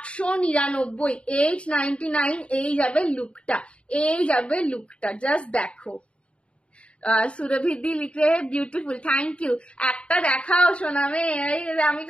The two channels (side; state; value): right; late; 0.059 ms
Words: 899। এই যাবে লুকটা, এই যাবে লুকটা, জাস্ট দেখো। সুরভিদি লিখে বিউটিফুল, থ্যাংক ইউ। একটা দেখাও সোনামে, আমি